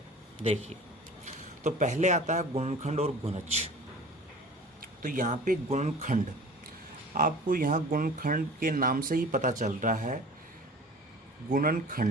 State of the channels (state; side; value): normal; both; correlation 0.42